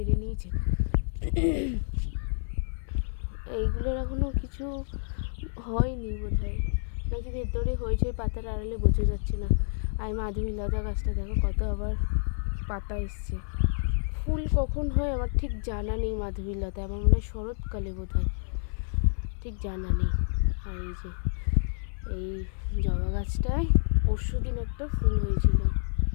নিয়েছে। এইগুলোর এখনও কিছু হয়নি বোধ হয়, নাকি ভেতরে হয়েছে, পাতার আড়ালে বোঝা যাচ্ছে না। আর মাধবীলতা গাছটা দেখো কত আবার পাতা এসছে। ফুল কখন হয় আমার ঠিক জানা নেই মাধবীলতা, আমার মনে হয় শরৎকালে বোধ হয়, ঠিক জানা নেই। আর এই যে এই জবা গাছটায় পরশু দিন একটা ফুল হয়েছিল,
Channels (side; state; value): right; silent; 59 dB below the other